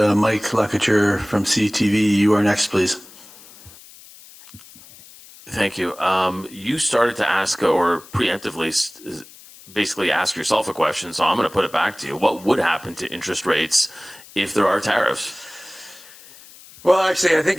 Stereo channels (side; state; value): left; noise; hiss, 21 dB below the sound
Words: Lacouture from CTV, you are next, please. Thank you. You started to ask, or preemptively basically ask yourself a question, so I'm going to put it back to you. What would happen to interest rates if there are tariffs? Well, actually, I